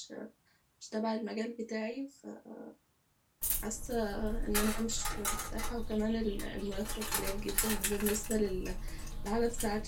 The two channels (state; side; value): identical; both; correlation 1.00